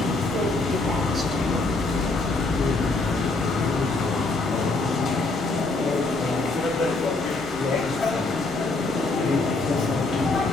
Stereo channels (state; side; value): quieter; right; 3.4 dB